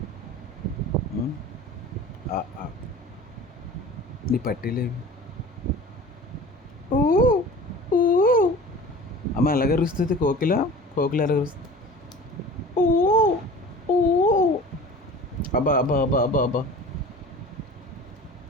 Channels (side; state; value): both; normal; correlation 0.40